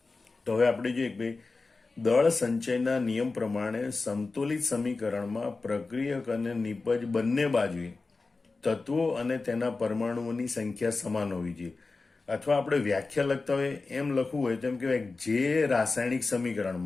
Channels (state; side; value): quieter; right; 3.8 dB